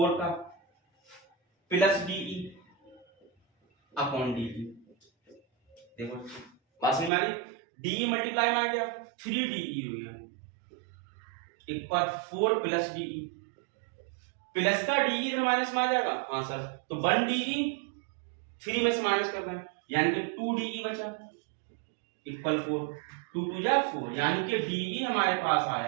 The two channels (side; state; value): left; drops out; at 7.1 s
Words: का, प्लस DE अपॉन DE। देखो बात समझ में आ गई। DE मल्टीप्लाई में आ गया 3DE हो गया, एक बार 4 प्लस DE, प्लस का DE इधर माइनस में आ जाएगा। हाँ सर, तो 1 DE 3 में से माइनस कर रहे हैं यानी कि 2DE बचा इक्वल 4, 2 2 जा 4, यानी कि DE हमारे पास